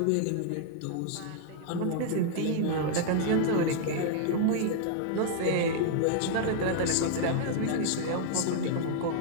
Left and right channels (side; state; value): both; different; correlation -0.01